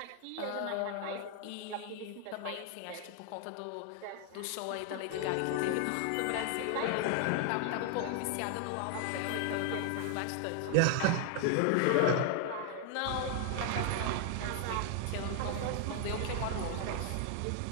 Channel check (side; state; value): both; different; correlation 0.00